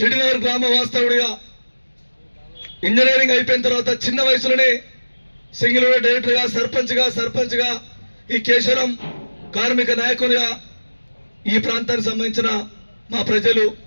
గ్రామ వాస్తవుడిగా, ఇంజనీరింగ్ అయిపోయిన తర్వాత చిన్న వయసులోనే సింగిల్ డైరెక్టర్గా, సర్పంచ్గా ఈ కేశవరం కార్మిక నాయకునిగా ఈ ప్రాంతానికి సంబంధించిన మా ప్రజలు,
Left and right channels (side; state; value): both; inverted; correlation -1.00